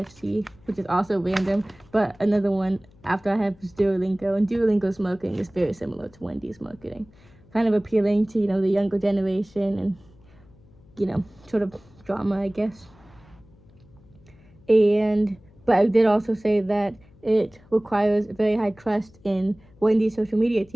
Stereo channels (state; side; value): noise; left; hum, 27 dB below the sound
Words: which is also random, but another one after I have is Duolingo, and Duolingo's marketing is very similar to Wendy's marketing, kind of appealing to the younger generation, and sort of drama, I guess. But I did also say that it requires very high trust in Wendy's social media